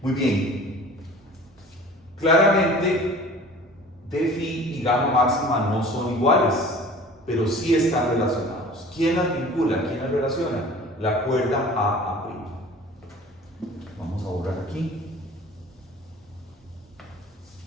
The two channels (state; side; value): normal; both; correlation 0.44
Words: bien. Claramente, d' y gamma máxima no son iguales, pero sí están relacionados. ¿Quién las vincula? ¿Quién las relaciona? La cuerda A'. Vamos a borrar aquí.